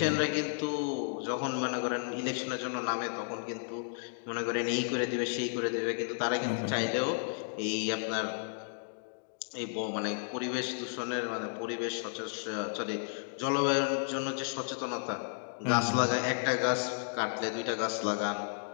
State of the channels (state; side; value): silent; right; digital silence